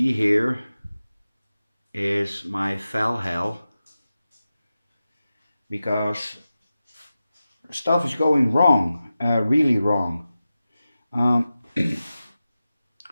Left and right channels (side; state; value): both; inverted; correlation -0.94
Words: here is my fell hell because stuff is going wrong, really wrong. Um,